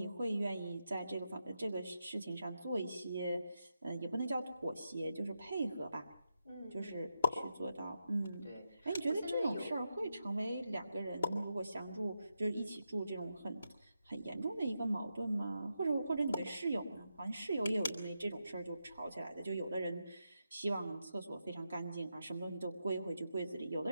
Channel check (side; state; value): both; inverted; correlation -0.86